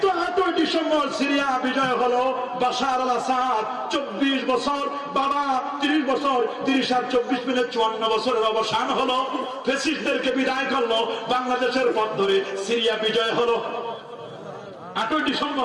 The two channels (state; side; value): identical; both; correlation 1.00